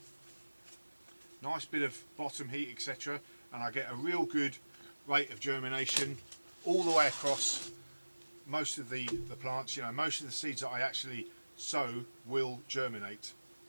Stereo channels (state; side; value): inverted; both; correlation -1.00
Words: nice bit of bottom heat, etc., and I get a real good rate of germination all the way across most of the plants. You know, most of the seeds that I actually sow will germinate,